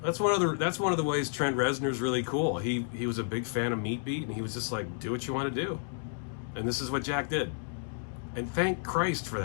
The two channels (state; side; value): silent; right; digital silence